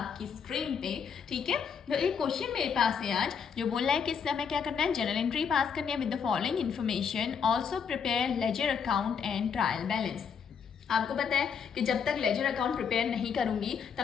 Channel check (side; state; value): right; quieter; 6.7 dB